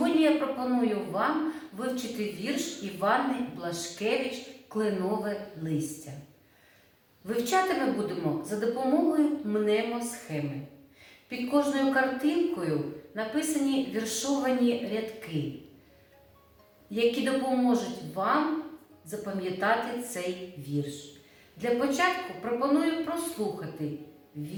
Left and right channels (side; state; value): both; identical; correlation 1.00